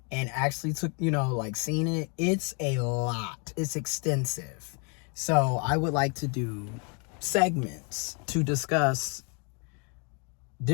and actually took, seen it, it's a lot. It's extensive. So I would like to do segments to discuss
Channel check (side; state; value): right; quieter; 36.0 dB